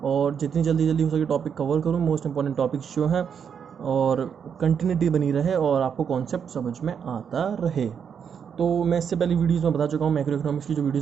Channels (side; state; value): left; quieter; 7.3 dB